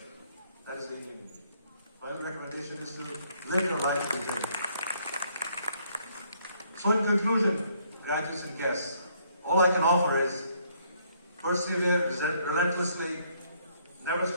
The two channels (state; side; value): inverted; both; correlation -0.68